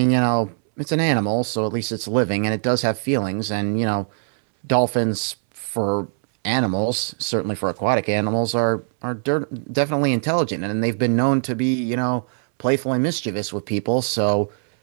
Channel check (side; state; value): left; silent; 64 dB below the other